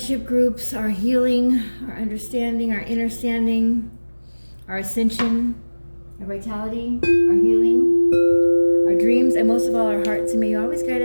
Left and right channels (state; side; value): inverted; both; correlation -1.00